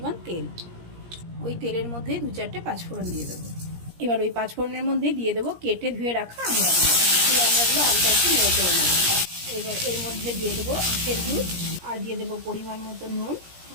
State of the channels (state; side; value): late; left; 17 ms